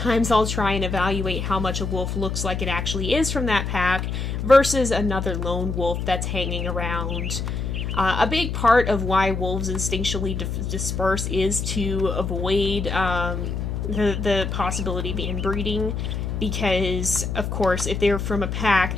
I'll try and evaluate how much a wolf looks like it actually is from that pack versus another lone wolf that's hanging around. A big part of why wolves instinctually disperse is to avoid the possibility of inbreeding, because of course if they're from a pack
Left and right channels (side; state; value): left; noise; hum, 3 dB below the sound